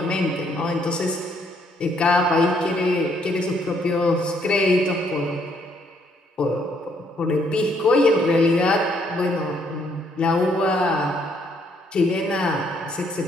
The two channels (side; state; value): both; normal; correlation 0.69